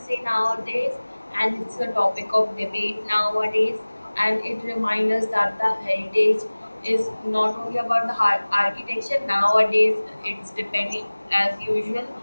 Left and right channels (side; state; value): both; inverted; correlation -1.00